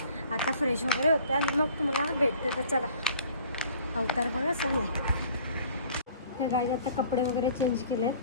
आता फ्रेश वगैरे होते आणि मग तुम्हाला भेटते. तर चला, अवतार बघा चालला आहे. त्या गायचे आता कपडे वगैरे चेंज केले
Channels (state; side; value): inverted; both; correlation -0.52